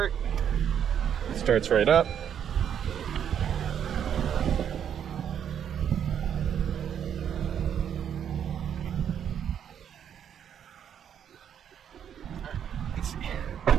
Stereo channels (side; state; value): left; quieter; 8.8 dB